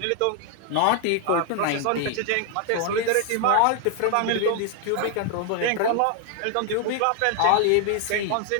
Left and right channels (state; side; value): different; both; correlation 0.00